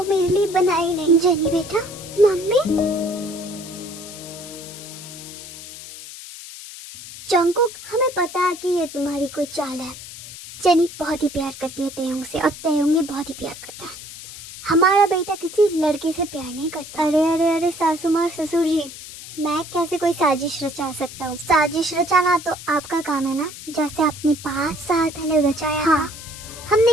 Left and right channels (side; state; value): left; noise; hiss, 13 dB below the sound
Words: मेरे लिए बना ही नहीं। जेनी बेटा, मम्मी। जंगकुक, हमें पता है कि ये तुम्हारी कोई चाल है। जेनी बहुत ही प्यार करती है तेयुंग से और तेयुंग भी बहुत ही प्यार करता है। हमारा बेटा किसी लड़के से प्यार नहीं करता। अरे अरे अरे सासू माँ और ससुर जी, मैं कैसे कोई साजिश रचा सकता हूँ? साजिश रचाना तो आपका काम है ना, जैसे आपने 5 साल पहले रचाया। हाँ,